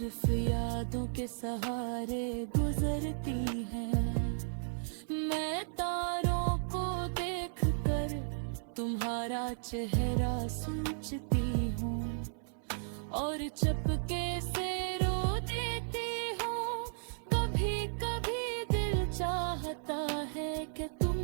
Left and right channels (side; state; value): left; silent; 55 dB below the other